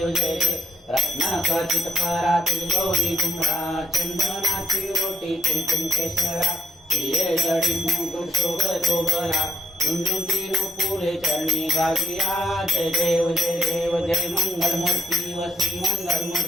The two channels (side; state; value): both; normal; correlation 0.75